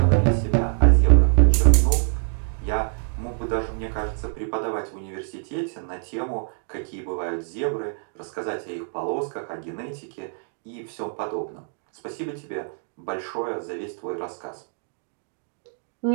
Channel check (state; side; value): silent; left; 62 dB below the other